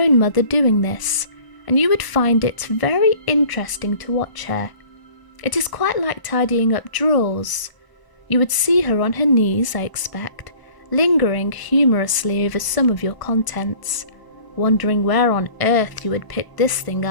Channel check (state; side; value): late; right; 1.0 ms